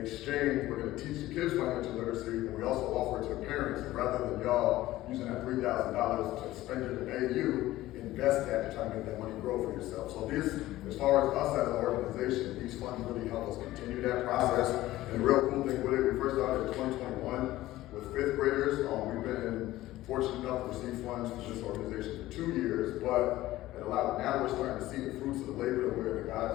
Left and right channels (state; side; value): quieter; right; 16.1 dB